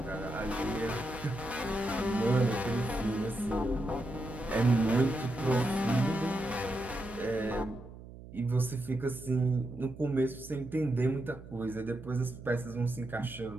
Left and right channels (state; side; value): noise; right; hum, 15 dB below the sound